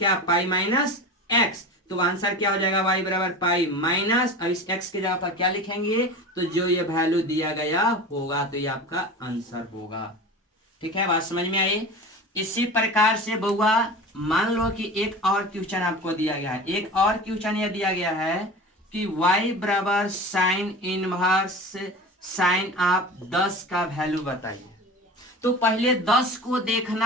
पाई माइनस एक्स, तो आंसर क्या हो जाएगा y बराबर पाई माइनस, अब इस x की जगह पर क्या लिखेंगे, तो जो ये वैल्यू दिया गया होगा तो ये आपका आंसर होगा। ठीक है, बात समझ में आई। इसी प्रकार से बउआ मान लो कि एक और क्वेश्चन आपको दिया गया है, एक और क्वेश्चन ये दिया गया है कि y बराबर साइन इनवर्स साइन आप 10 का वैल्यू बताइए। तो पहले 10 को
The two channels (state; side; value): normal; both; correlation 0.33